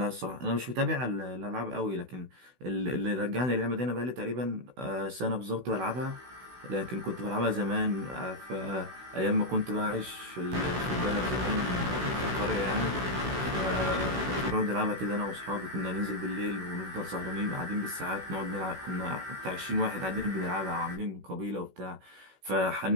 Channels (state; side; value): late; left; 16 ms